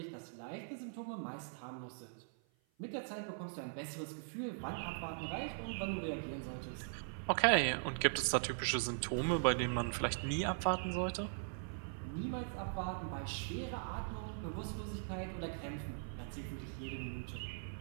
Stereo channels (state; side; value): silent; left; 51 dB below the other